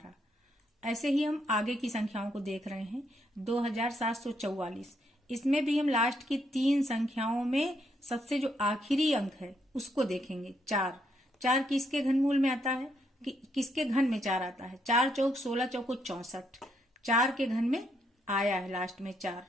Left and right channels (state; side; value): normal; both; correlation 0.76